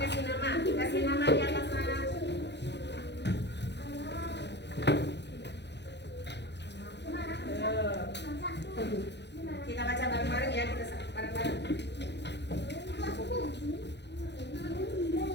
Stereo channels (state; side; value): late; right; 0.50 ms